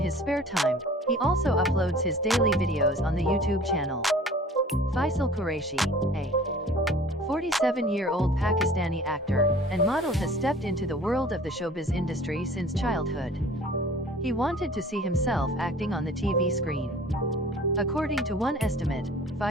spare time, he also uploads his daily videos on the YouTube channel. Faisal Qureshi, a 47-year-old Pakistani actor and model, has stepped into the world of the showbiz industry since childhood. He wanted to see himself acting on the TV screen. According to one estimate,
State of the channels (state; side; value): normal; both; correlation 0.47